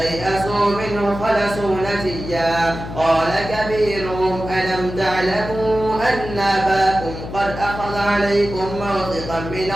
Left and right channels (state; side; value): noise; left; hum, 9 dB below the sound